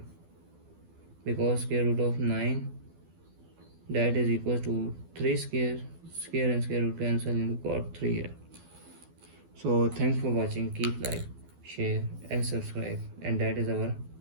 because square root of 9 that is equals to 3 square and square root cancel and we got 3 here. So thanks for watching, keep like, share and subscribe, and that is our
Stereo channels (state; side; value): late; left; 12 ms